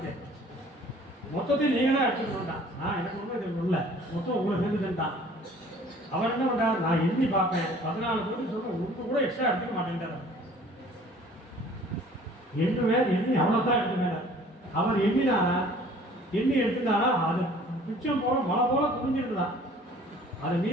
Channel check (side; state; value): both; normal; correlation 0.52